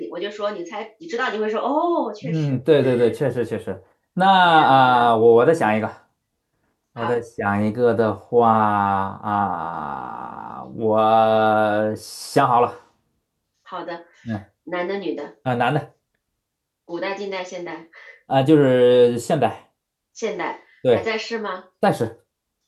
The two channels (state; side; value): identical; both; correlation 1.00